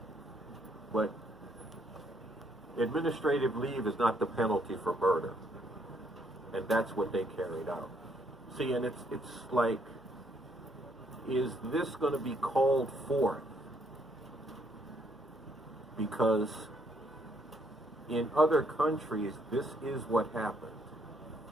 But administrative leave is not the penalty for murder. And that's what they carried out. See, and it's like, is this going to be called forth? Because in other countries, this is what happened.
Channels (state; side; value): noise; right; hum, 30 dB below the sound